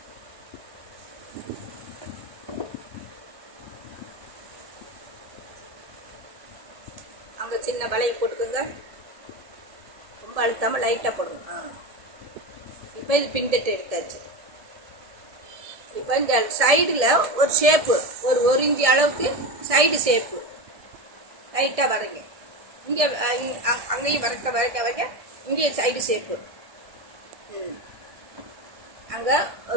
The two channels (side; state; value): left; late; 1.7 ms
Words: அங்கே சின்ன வளையம் போட்டுக்குங்க. ரொம்ப அழுத்தாமல் லைட்டாக போடுங்க. இப்போ இது பின்தட்டு எடுத்தாச்சு. இப்போ இந்த சைடில் ஒரு ஷேப்பு, ஒரு இன்ச்சு அளவுக்கு சைடு ஷேப்பு லைட்டாக வரைங்க. இங்கே அங்கேயும் வரைக்க இங்கேயும் சைடு ஷேப்பு. அங்கே